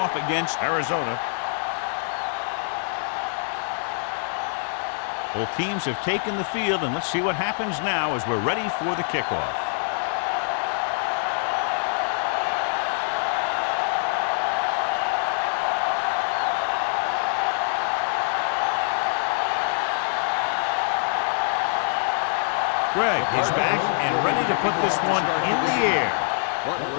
against Arizona. Both teams have taken the field, and let's see what happens now as we're ready for the kickoff. Greg is back and ready to put this one in the air.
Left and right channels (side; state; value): right; silent; digital silence